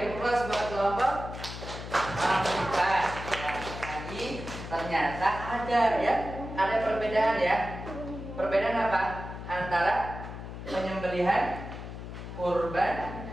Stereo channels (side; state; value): left; noise; hum, 9 dB below the sound